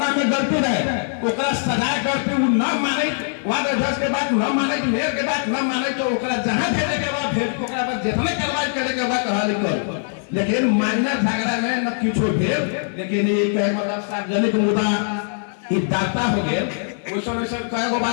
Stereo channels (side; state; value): right; silent; digital silence